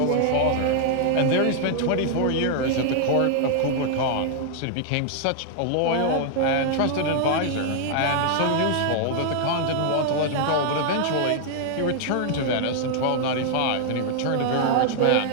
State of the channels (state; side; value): different; both; correlation 0.00